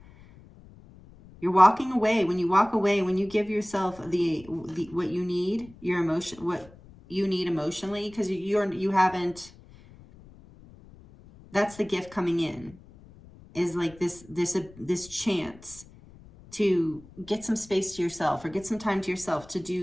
you're walking away, when you walk away, when you give yourself the what you need, your emotion, what you need emotionally, because you haven't, that's the gift coming in, is like this chance to get some space to yourself, or get some time to yourself to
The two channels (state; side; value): noise; left; rumble, 22 dB below the sound